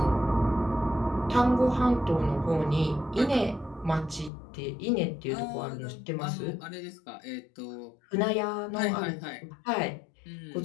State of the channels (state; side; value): drops out; right; at 4.3 s